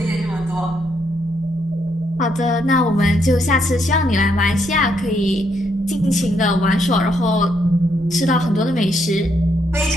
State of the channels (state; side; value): normal; both; correlation 0.76